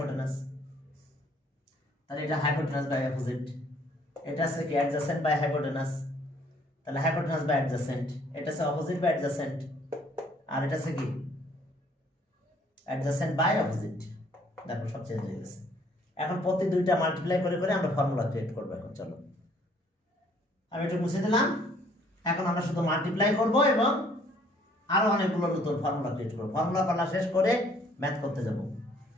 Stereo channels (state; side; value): normal; both; correlation 0.61